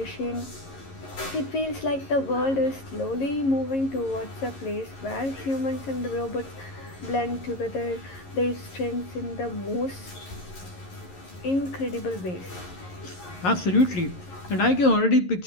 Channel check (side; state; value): right; late; 11 ms